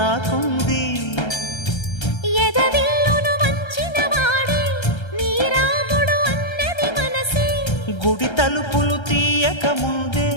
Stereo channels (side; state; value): right; late; 1.3 ms